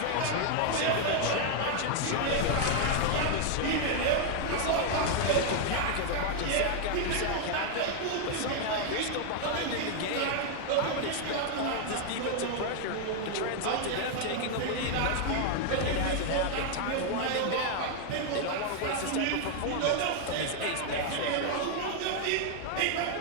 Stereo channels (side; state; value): both; different; correlation 0.00